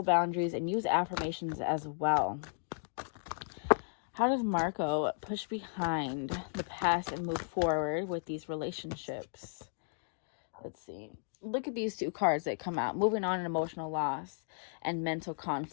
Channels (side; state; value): right; silent; digital silence